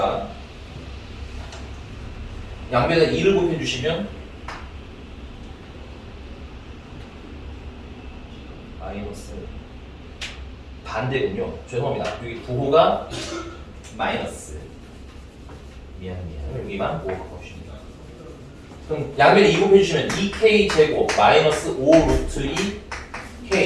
양변에 2를 곱해주시면 마이너스 반대군요. 죄송합니다. 여기 부호가 마이너스. 미안. 여기만 5 곱합시다. 그럼 양변에 2 곱해주시면 2K 제곱 마이너스 5 루트 2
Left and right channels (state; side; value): identical; both; correlation 1.00